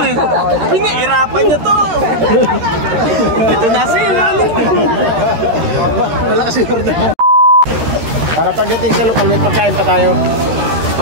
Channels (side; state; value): left; late; 13 ms